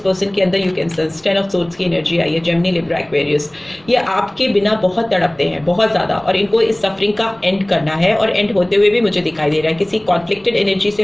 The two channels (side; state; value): right; noise; rumble, 30 dB below the sound